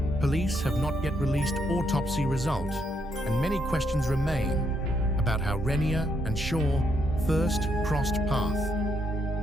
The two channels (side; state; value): both; normal; correlation 0.76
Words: Police have not yet released autopsy result, and many questions remain about how Renia and Shaw first crossed path.